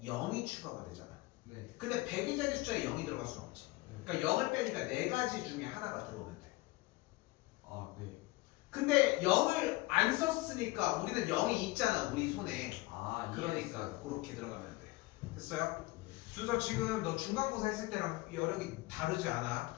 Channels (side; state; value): right; quieter; 21.4 dB